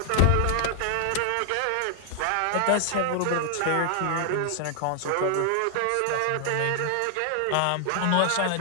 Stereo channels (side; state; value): both; different; correlation 0.00